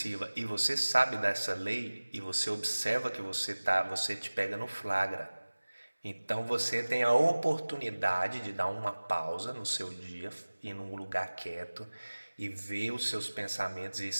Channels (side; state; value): both; inverted; correlation -1.00